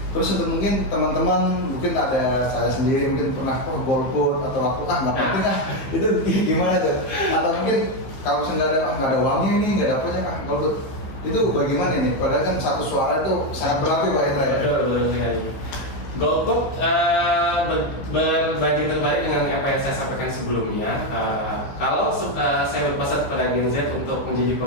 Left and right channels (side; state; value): right; late; 15 ms